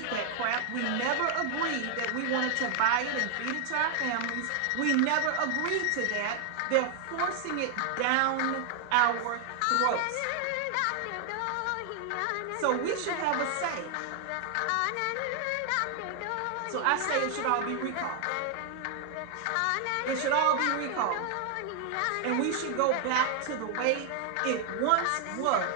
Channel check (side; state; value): both; different; correlation 0.00